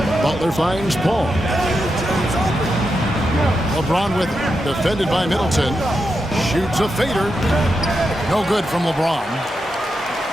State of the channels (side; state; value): both; normal; correlation 0.86